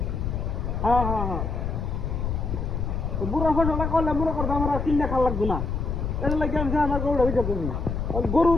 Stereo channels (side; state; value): left; noise; rumble, 2 dB below the sound